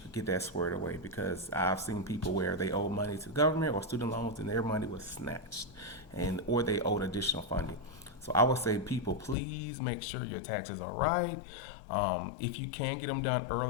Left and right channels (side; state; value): right; drops out; at 9.3 s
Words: could get that squared away because I've seen people where they owe money to the government or student loans and their money was snatched, and or they owed additional funding. So I would say, people, please make sure your taxes are right. If you can get them done